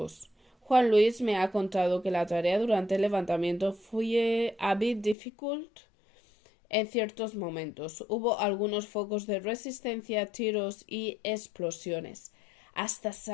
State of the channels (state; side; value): drops out; right; at 5.2 s